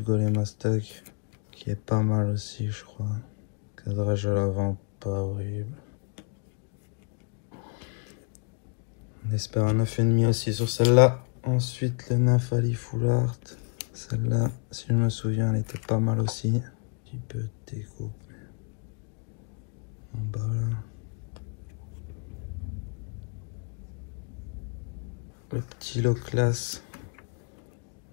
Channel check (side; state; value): right; quieter; 35.6 dB